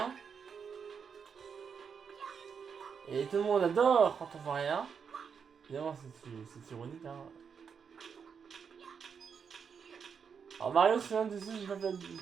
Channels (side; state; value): left; quieter; 6.5 dB